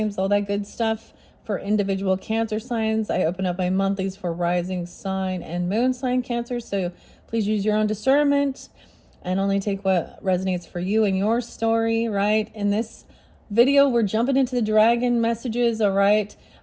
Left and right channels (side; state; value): both; identical; correlation 1.00